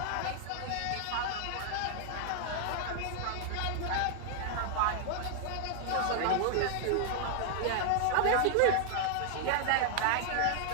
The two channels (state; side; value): different; both; correlation 0.00